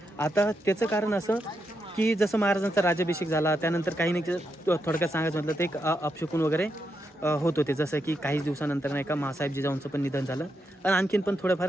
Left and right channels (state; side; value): normal; both; correlation 0.83